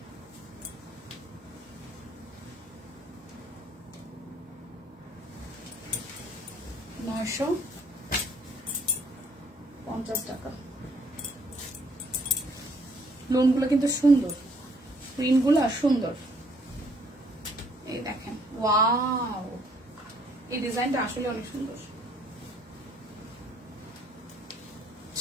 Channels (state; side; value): normal; both; correlation 0.64